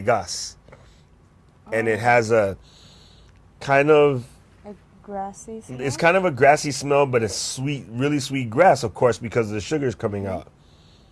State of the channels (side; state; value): both; identical; correlation 1.00